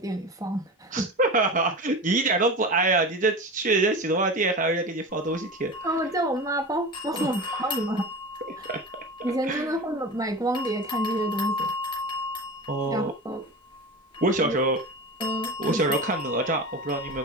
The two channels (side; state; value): both; normal; correlation 0.29